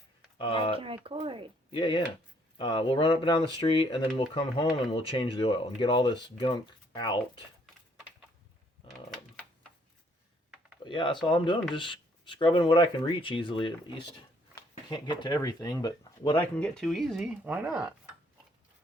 I can record. Yeah. We'll run up and down the street, and then we'll come home and we'll change the oil and get all this gunk out. But yeah, that's all I'm doing. Just scrubbing what I can reach easily, at least. Can't get to everything, but what I can get to easy, why not?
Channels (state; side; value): normal; both; correlation 0.66